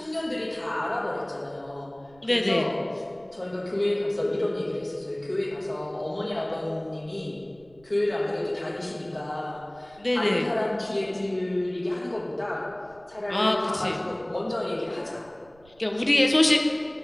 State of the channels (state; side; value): noise; right; rumble, 28 dB below the sound